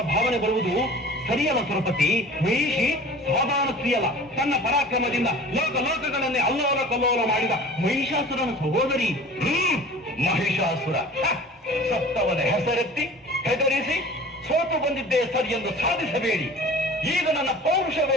ಭಾವನೆ ಬರುವುದು ಸರಿಯಲ್ಲ ಸುರಪತಿ. ಮಹಿಷಿ ಸಾಧಾರಣ ಸ್ತ್ರೀಯಲ್ಲ, ತನ್ನ ಪರಾಕ್ರಮದಿಂದ ಲೋಕಲೋಕಗಳನ್ನೇ ಅಲ್ಲೋಲ ಕಲ್ಲೋಲ ಮಾಡಿದ ಮಹಿಷಾಸುರನ ಸಹೋದರಿ. ಮಹಿಷಾಸುರ ಸತ್ತವನ ಹೆಸರೆತ್ತಿ ಹೆದರಿಸಿ ಸೋತು ಬಂದಿದ್ದೇ ಸರಿ ಎಂದು ಸಾಧಿಸಬೇಡಿ. ಈಗ ನನ್ನ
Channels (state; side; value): normal; both; correlation 0.42